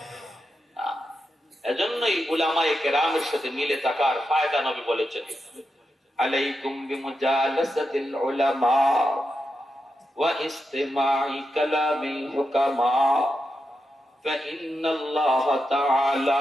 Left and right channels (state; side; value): normal; both; correlation 0.87